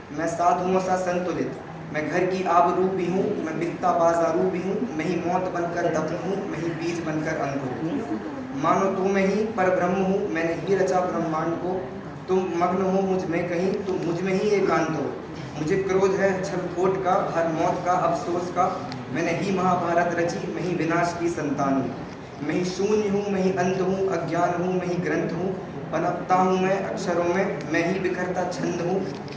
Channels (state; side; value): identical; both; correlation 1.00